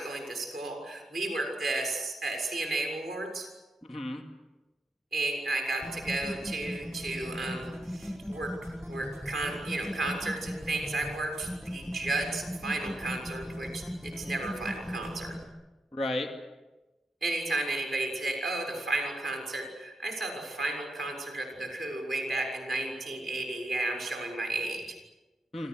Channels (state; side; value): normal; both; correlation 0.83